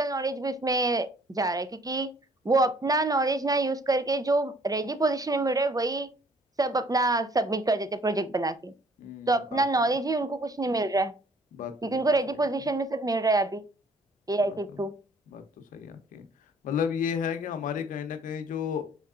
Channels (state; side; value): normal; both; correlation 0.58